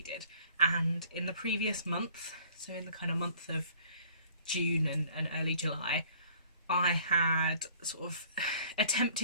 and in the previous month, so in the kind of month of June and early July, I had sort of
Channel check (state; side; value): inverted; both; correlation -0.54